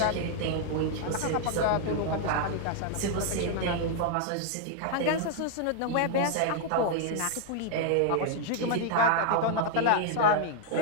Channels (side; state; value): both; different; correlation 0.00